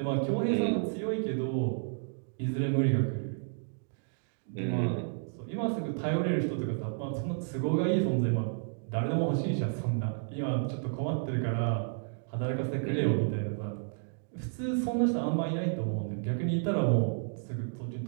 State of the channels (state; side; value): silent; left; digital silence